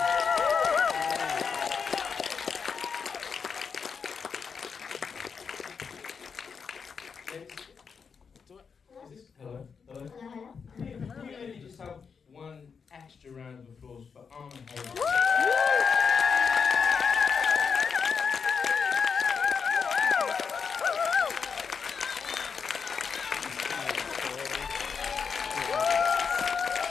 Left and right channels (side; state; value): right; quieter; 5.9 dB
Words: Hello. Hello. Can we maybe just have one extra round of applause for Arm and Heger?